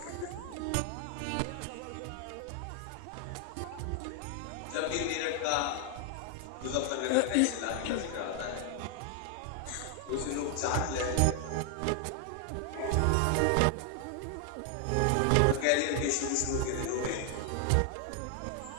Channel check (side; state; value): both; different; correlation 0.00